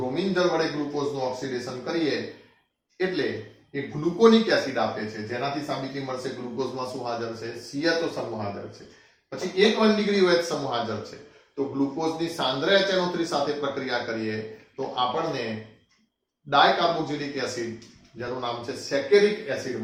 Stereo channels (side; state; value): both; identical; correlation 1.00